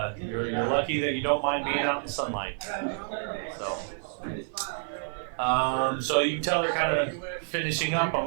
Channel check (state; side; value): silent; left; 59 dB below the other